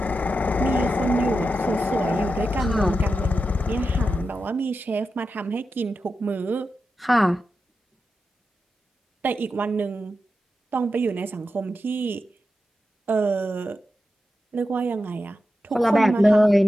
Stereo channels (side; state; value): both; normal; correlation 0.90